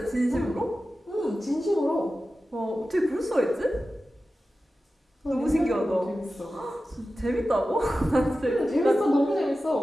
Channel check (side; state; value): both; normal; correlation 0.94